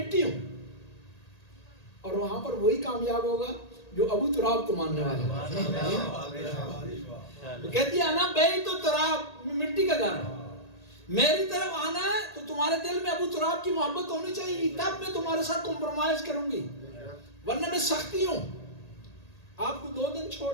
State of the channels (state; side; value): late; right; 1.8 ms